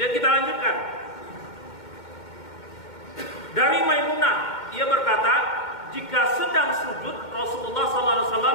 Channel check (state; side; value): late; right; 2.1 ms